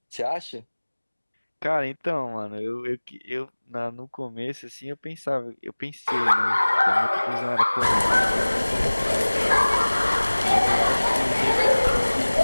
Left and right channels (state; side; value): inverted; both; correlation -1.00